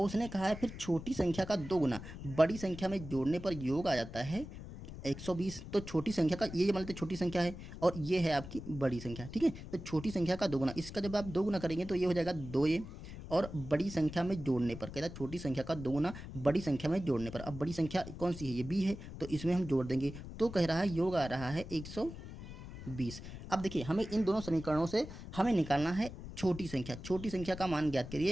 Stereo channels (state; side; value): noise; left; rumble, 11 dB below the sound